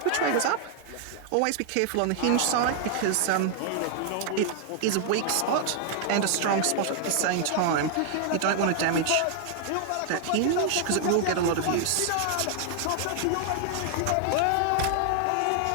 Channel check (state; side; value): different; both; correlation 0.00